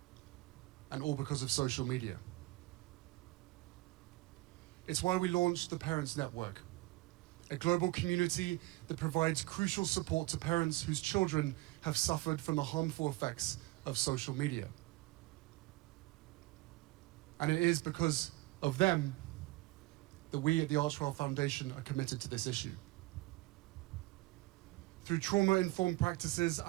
and all because of social media. It's why we launched the Parents Network, a global community that provides crucial support to parents whose children have suffered from the harmful effects of social media. And it is because of them that we at the Archewell Foundation are committed to this issue. Through trauma-informed practices,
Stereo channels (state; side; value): quieter; left; 20.6 dB